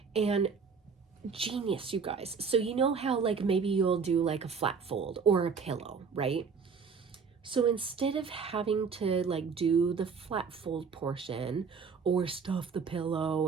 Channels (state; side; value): quieter; left; 5.7 dB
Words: And genius, you guys. So you know how like maybe you'll do like a flat fold or a pillow, right? So instead of having to like do the flat fold portion or stuff the